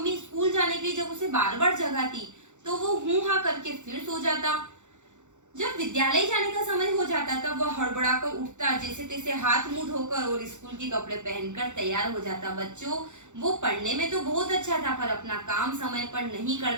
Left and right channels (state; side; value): late; left; 0.84 ms